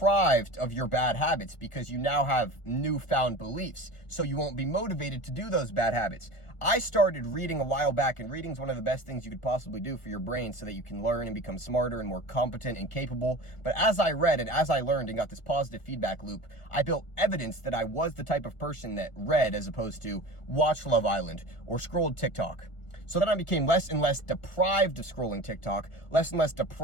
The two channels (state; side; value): late; right; 1.4 ms